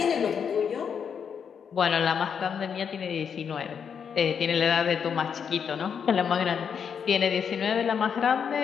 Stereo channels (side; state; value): right; quieter; 7.1 dB